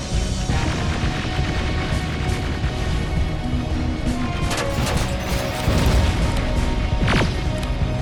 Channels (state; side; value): identical; both; correlation 1.00